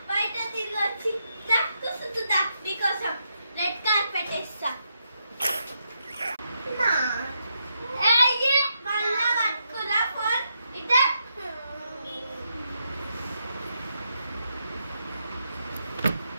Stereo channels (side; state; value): both; inverted; correlation -0.82